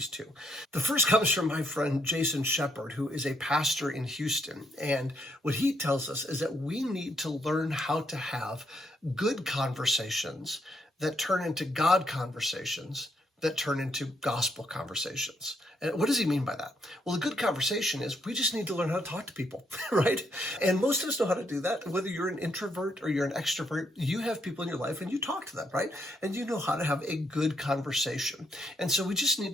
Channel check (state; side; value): normal; both; correlation 0.74